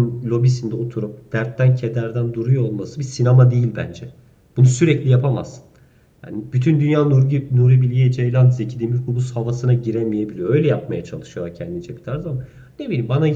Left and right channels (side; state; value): both; identical; correlation 1.00